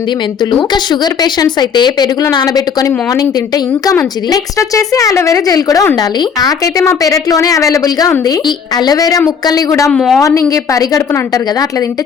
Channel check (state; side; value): quieter; right; 6.6 dB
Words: మెంతులు. ఇంకా షుగర్ పేషెంట్స్ అయితే పెరుగులో నానబెట్టుకొని మార్నింగ్ తింటే ఇంకా మంచిది. నెక్స్ట్ వచ్చేసి అలోవెరా జెల్ కూడా ఉండాలి. నాకైతే మా పెరట్లోనే అవైలబుల్ గా ఉంది. ఈ అలోవెరా ముక్కల్ని కూడా మార్నింగ్ పరిగడుపున అంటారు కదా, అట్లా తింటే